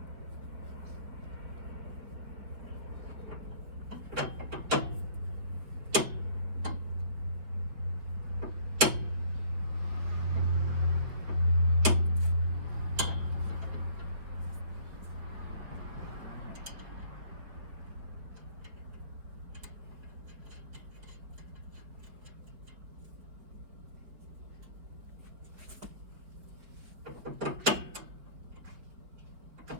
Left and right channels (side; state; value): left; late; 5.1 ms